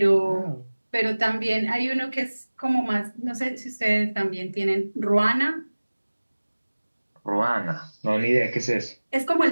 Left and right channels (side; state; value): both; inverted; correlation -1.00